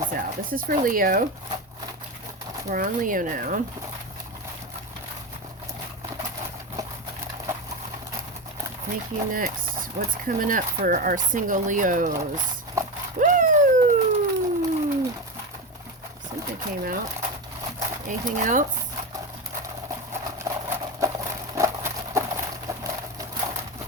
out. This is for Leo. We're on Leo now. Thank You Next. What's coming up for our single Leos? Woo! Something came out. Anything else?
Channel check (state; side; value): normal; both; correlation 0.18